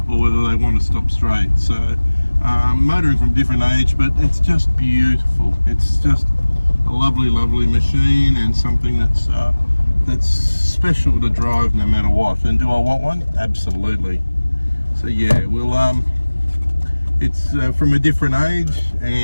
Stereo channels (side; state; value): both; inverted; correlation -1.00